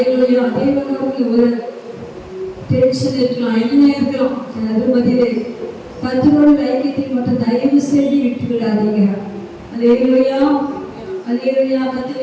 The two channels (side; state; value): both; identical; correlation 1.00